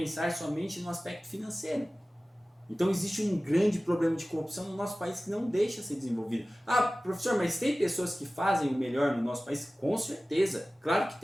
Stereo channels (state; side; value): normal; both; correlation 0.97